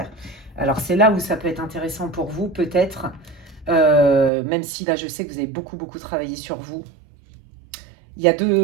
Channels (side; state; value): left; drops out; at 4.3 s